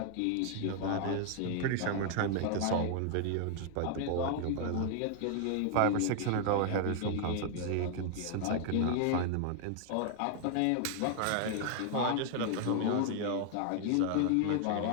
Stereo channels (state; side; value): different; both; correlation 0.00